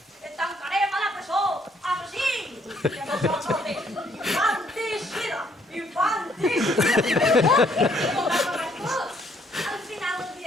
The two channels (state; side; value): normal; both; correlation 0.67